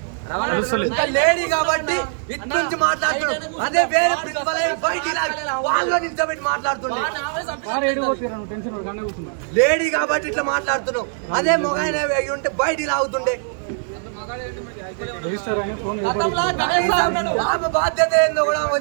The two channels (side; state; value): left; silent; 65 dB below the other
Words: ఇంకా లేడీ కాబట్టి ఇటు నుంచి మాట్లాడుతున్నాడు. అదే వేరే ప్రిన్సిపల్ బయటికి వాళ్ళలో నిల్చోబెట్టి మాట్లాడుతున్నాడు. లేడీ కాబట్టి ఇట్లా మాట్లాడుతున్నావు. అదే మొగాయన ఉంటే బయటికి లాగుతుండే. ఆమె బాధ్యత ఏందో కూడా ఆమె